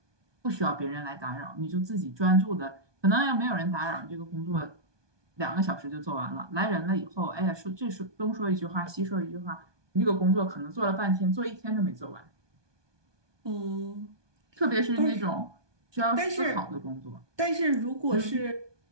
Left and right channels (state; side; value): late; left; 1.2 ms